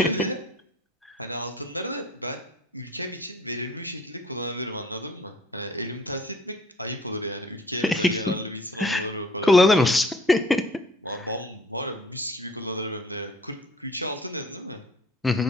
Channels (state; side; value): normal; both; correlation 0.53